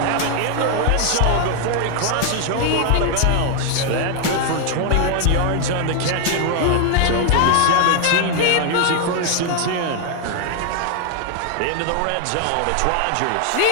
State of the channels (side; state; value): both; different; correlation 0.00